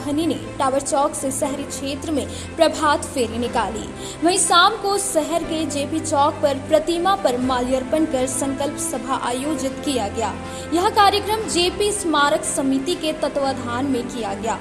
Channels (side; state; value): both; identical; correlation 1.00